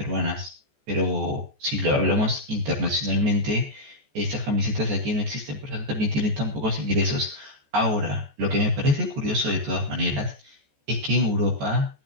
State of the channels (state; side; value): late; left; 14 ms